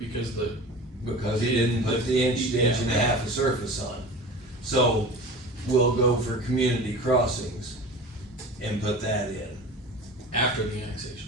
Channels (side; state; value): both; normal; correlation 0.36